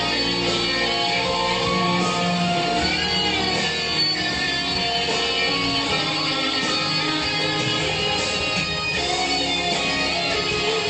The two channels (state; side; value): identical; both; correlation 1.00